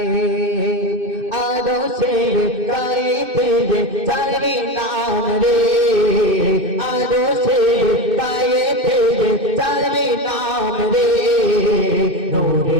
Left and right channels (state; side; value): late; left; 2.5 ms